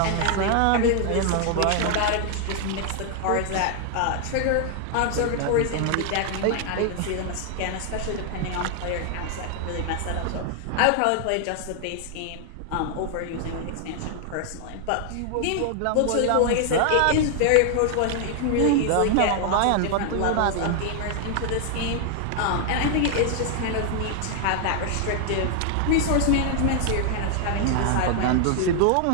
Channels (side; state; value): both; different; correlation 0.00